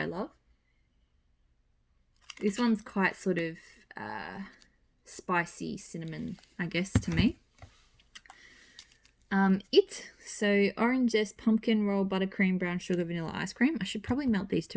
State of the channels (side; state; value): both; identical; correlation 1.00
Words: love. This one's quite sort of spicy cinnamon, I guess, to me. So orange zest, pumpkin roll, buttercream, brown sugar, vanilla ice cream. I should probably melt these